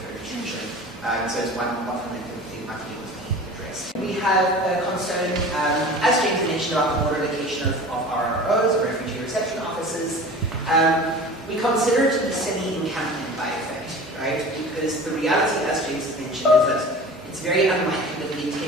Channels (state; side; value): normal; both; correlation 0.38